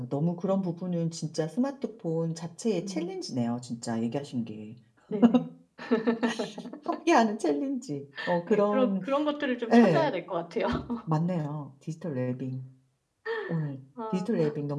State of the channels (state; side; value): identical; both; correlation 1.00